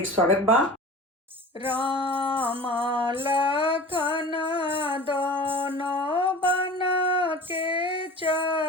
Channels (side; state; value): both; normal; correlation 0.38